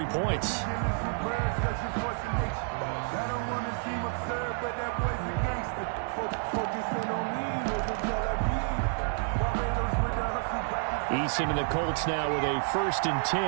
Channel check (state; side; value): silent; left; 58 dB below the other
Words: points. Eason and the Colts now with a 1st and